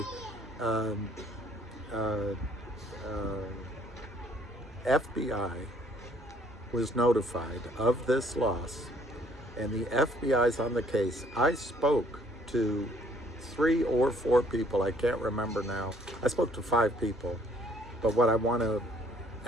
FBI was notified of this loss, and the FBI's on the case. I spoke to 3 or 4 people, I can't remember now. I spoke to 5 people, but what I want to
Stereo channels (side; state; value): both; normal; correlation 0.62